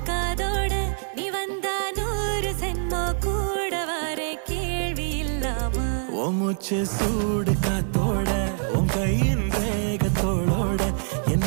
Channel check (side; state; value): left; silent; 59 dB below the other